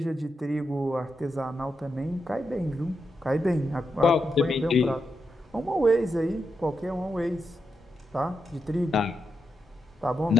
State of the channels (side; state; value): both; normal; correlation 0.86